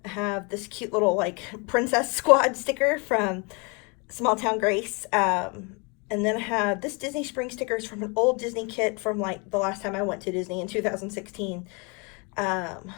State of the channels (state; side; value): quieter; right; 31.8 dB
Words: I have this cute little like Princess Squad sticker from Small Town Grace. And then I have this Disney Springs stickers from an old Disney kit from like the last time I went to Disney in 2016. And